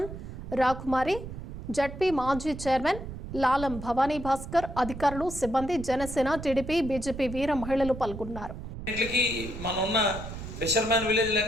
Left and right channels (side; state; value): right; noise; rumble, 10 dB below the sound